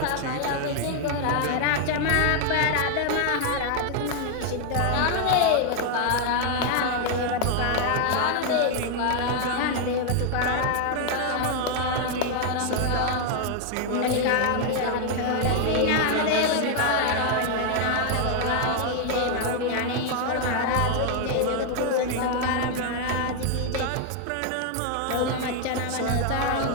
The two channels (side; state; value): both; different; correlation 0.00